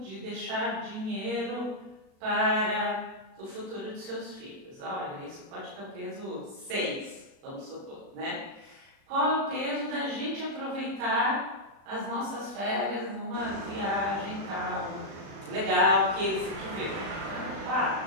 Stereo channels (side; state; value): left; late; 36 ms